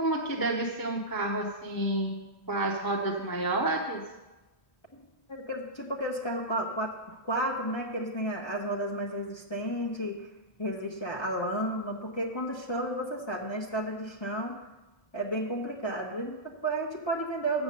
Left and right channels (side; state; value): right; late; 1.3 ms